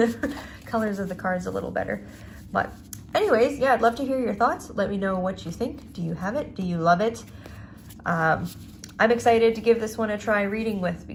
colors of the cards a little better. But anyways, yeah, I'd love to hear your thoughts. Let me know what you think. Do you have it? Do you love it? I'm excited to give this one a try reading with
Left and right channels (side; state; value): both; identical; correlation 1.00